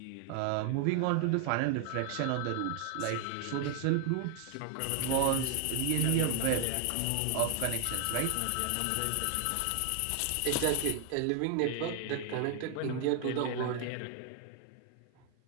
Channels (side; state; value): both; different; correlation 0.00